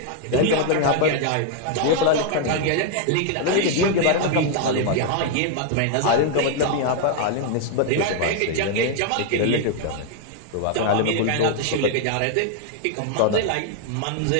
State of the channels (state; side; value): different; both; correlation 0.00